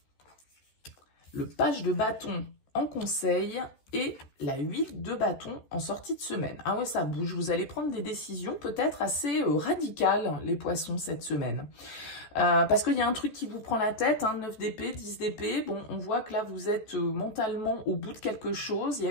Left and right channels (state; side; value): late; right; 14 ms